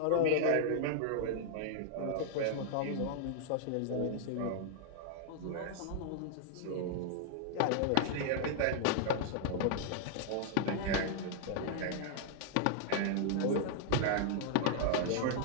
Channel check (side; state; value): both; different; correlation -0.01